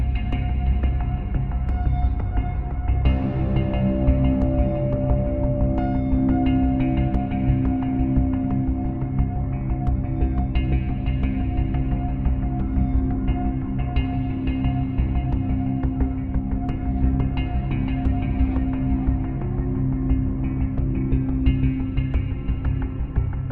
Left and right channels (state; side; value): identical; both; correlation 1.00